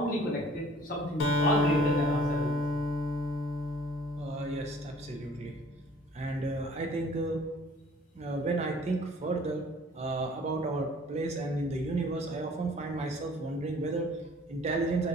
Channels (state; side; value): normal; both; correlation 0.52